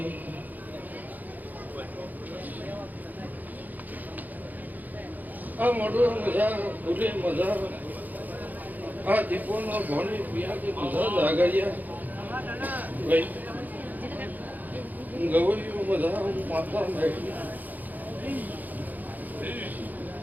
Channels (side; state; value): left; late; 0.083 ms